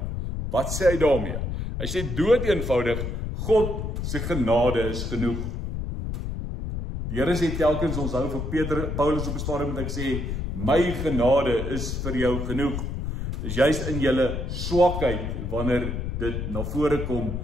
Wat sê hy daarmee? Hy sê dood eenvoudig, God se genade is genoeg. Die Here sê telkens, ons hou vir Paulus op 'n stadium met ek sê, my genade is vir jou genoeg. Dis juist in julle swakheid wanneer dit na vore kom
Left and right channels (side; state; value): left; noise; rumble, 4 dB below the sound